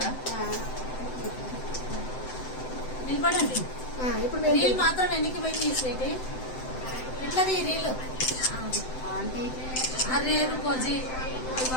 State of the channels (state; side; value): late; right; 7.8 ms